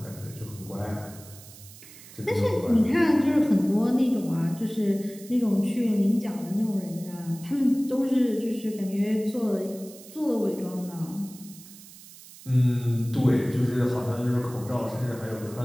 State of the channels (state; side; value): noise; right; hiss, 19 dB below the sound